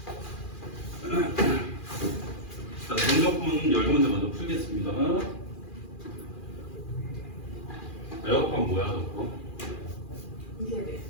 자, 정적분 10문제 먼저 풀겠습니다. 에어컨 뭐야, 저거? 이세대.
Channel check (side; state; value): right; late; 2.4 ms